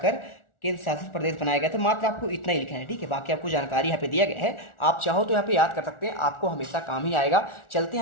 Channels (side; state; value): right; late; 1.4 ms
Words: केंद्र शासित प्रदेश बनाया गया था। मात्र आपको इतना ही लिखना है, ठीक है। बाकी आपको जानकारी यहाँ पे दिया गया है, आप चाहो तो यहाँ पे याद कर सकते हैं, आपको हमेशा काम ही आएगा। चलते